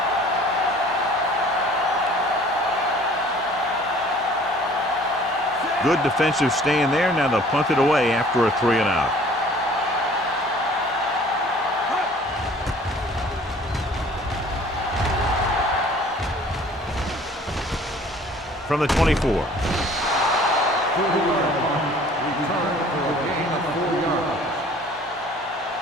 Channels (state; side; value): normal; both; correlation 0.52